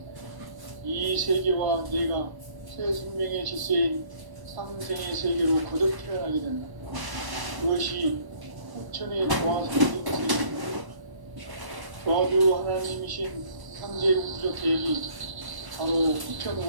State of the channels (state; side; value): late; left; 1.1 ms